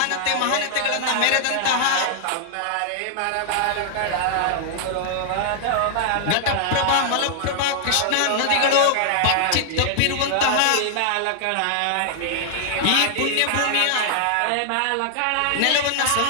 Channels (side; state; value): both; different; correlation -0.01